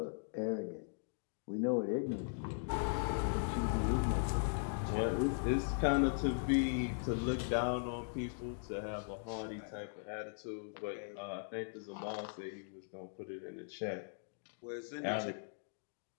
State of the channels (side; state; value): right; silent; digital silence